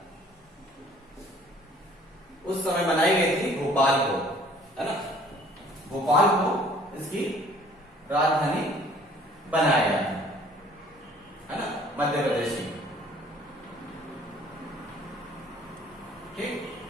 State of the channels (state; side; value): normal; both; correlation 0.55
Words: उस समय बनाई गई थी भोपाल को, है ना, भोपाल को इसकी राजधानी बनाया गया है ना, मध्य प्रदेश की। ठीक,